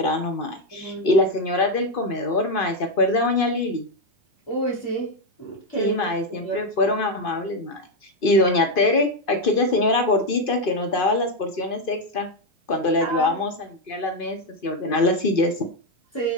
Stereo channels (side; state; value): right; late; 2.5 ms